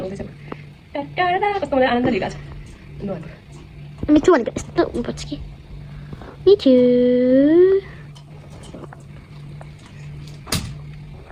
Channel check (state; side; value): identical; both; correlation 1.00